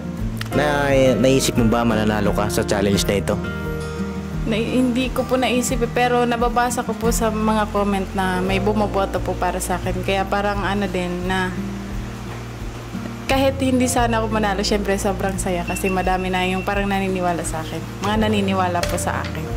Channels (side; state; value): both; identical; correlation 1.00